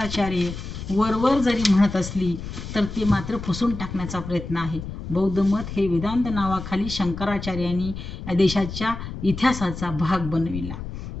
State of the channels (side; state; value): left; noise; rumble, 9 dB below the sound